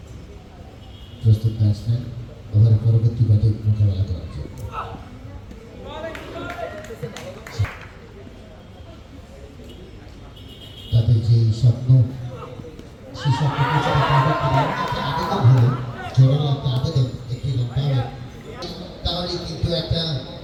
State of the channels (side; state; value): both; identical; correlation 1.00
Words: প্রস্তুত ব্যাটসম্যান ওভারের পরবর্তী ব্যাটে মোকাবেলা করার জন্য তাদের যে স্বপ্ন সেই স্বপ্নকে আবেদন হলো জোরালো একটা আবেদন একটি রান পাবে তাহলে কিন্তু একটা